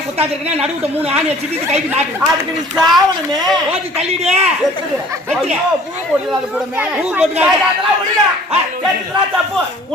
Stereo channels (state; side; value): normal; both; correlation 0.51